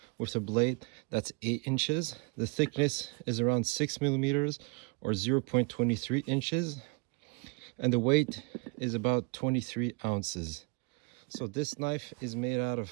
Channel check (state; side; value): quieter; left; 31.7 dB